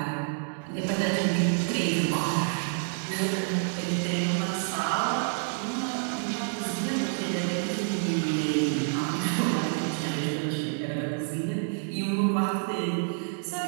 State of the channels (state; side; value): silent; left; digital silence